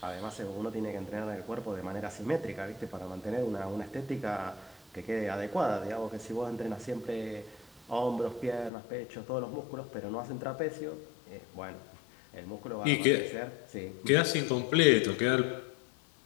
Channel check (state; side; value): drops out; right; at 8.7 s